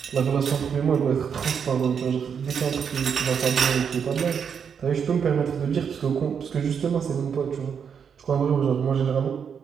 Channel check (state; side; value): quieter; left; 7.1 dB